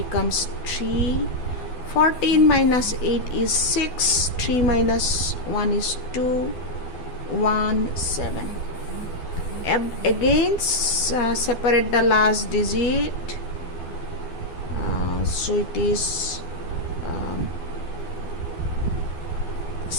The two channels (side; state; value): right; late; 12 ms